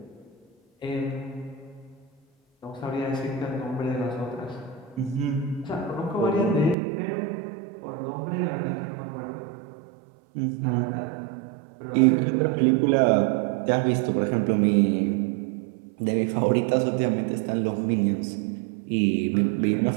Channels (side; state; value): left; drops out; at 6.8 s